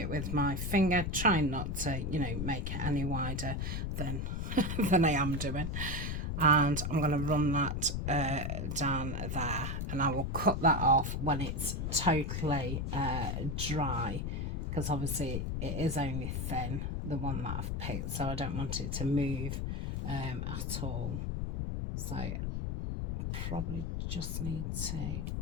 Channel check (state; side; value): noise; left; rumble, 1 dB below the sound